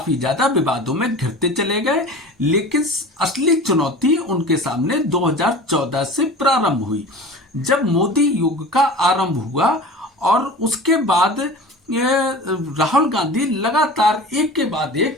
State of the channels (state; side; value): normal; both; correlation 0.36